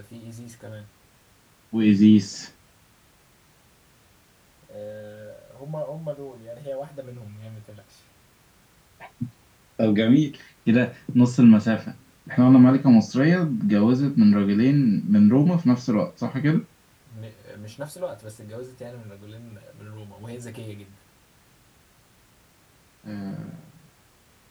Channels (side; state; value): both; identical; correlation 1.00